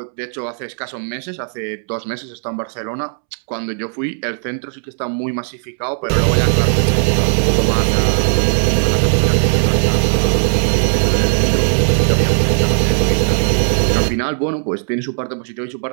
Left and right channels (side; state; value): left; silent; 68 dB below the other